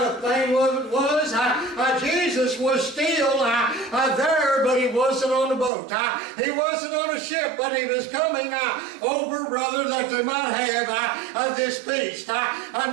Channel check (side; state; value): left; drops out; at 5.7 s